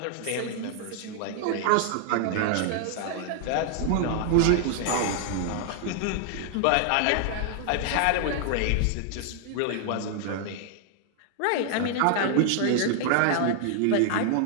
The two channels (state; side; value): different; both; correlation 0.00